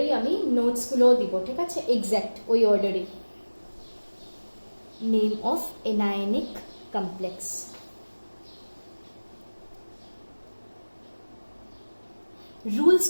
আমি নোটসগুলোও দিব। ঠিক আছে, এক্স্যাক্ট ওই অর্ডারেই। Name of anionic complex. Rules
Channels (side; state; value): both; inverted; correlation -1.00